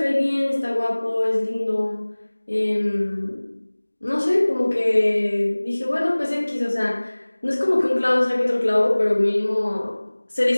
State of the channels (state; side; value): inverted; both; correlation -1.00